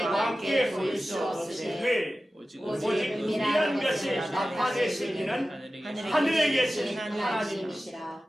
보일 수 없으되 오직 은밀한 것을 나타내실 이는 하늘에 계신 하나님이시라.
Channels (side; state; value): both; normal; correlation 0.95